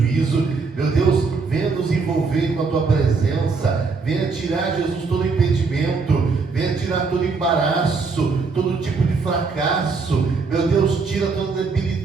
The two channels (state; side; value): quieter; left; 4.5 dB